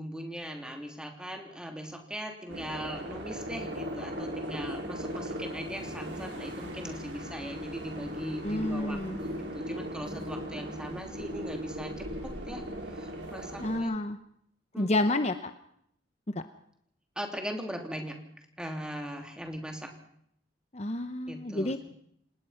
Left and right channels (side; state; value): both; normal; correlation 0.54